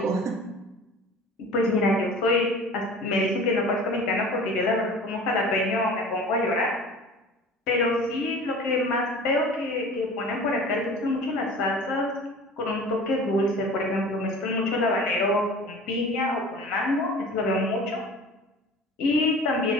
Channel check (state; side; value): normal; both; correlation 0.41